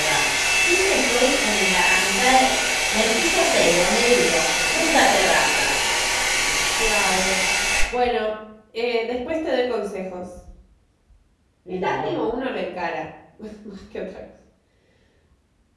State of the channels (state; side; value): identical; both; correlation 1.00